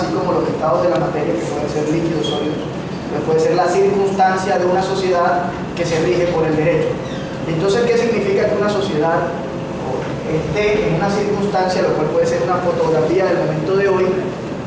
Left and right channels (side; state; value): both; identical; correlation 1.00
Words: como los estados de la materia, que pueden ser líquidos, sólidos, que puede ser la circunstancia de una sociedad que se rige por el derecho. Entonces, ¿qué significa que una sociedad esté en una circunstancia, lo cual puede ser una fotografía del momento de hoy?